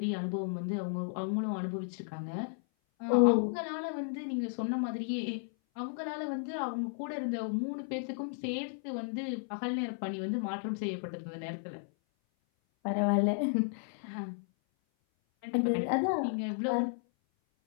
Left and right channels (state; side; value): silent; right; 55 dB below the other